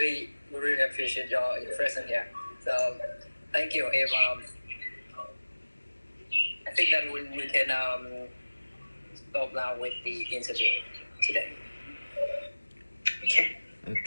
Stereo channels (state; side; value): inverted; both; correlation -1.00